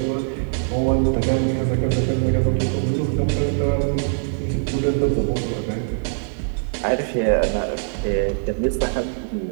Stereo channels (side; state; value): left; silent; 60 dB below the other